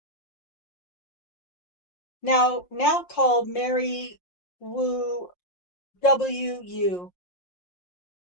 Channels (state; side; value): late; right; 5.6 ms